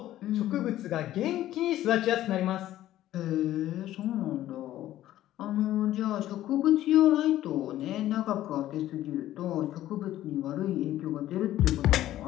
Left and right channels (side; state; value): right; quieter; 13.7 dB